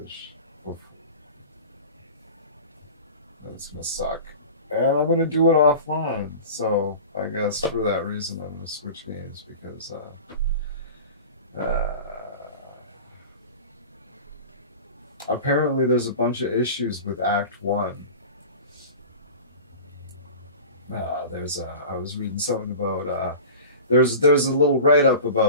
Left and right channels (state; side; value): inverted; both; correlation -0.36